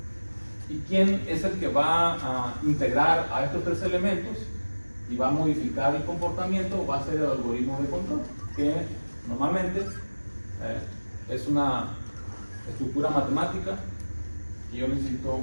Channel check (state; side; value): inverted; both; correlation -1.00